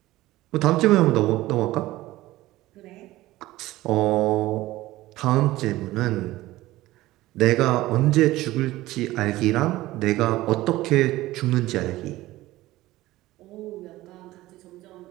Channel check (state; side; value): quieter; left; 17.2 dB